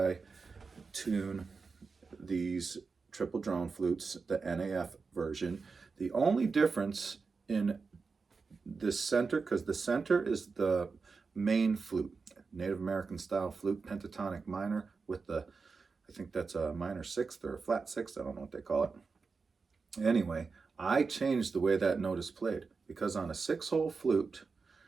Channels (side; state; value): left; quieter; 4.7 dB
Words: tune these triple drone flutes, the NAF version. The only difference in the center, because the center is the main flute, Native American style flute, pentatonic minor with the, I think that's a minor sixth or a flat sixth, I don't know what they call it. Anyway, I changed the way that note is played, because on a 6-hole flute,